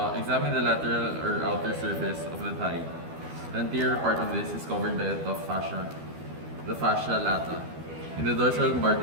Examine the lateral or outer surface of the thigh. The anterior part of this is covered by a tough fascia, the fascia lata. In the dorsal part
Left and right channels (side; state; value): left; late; 12 ms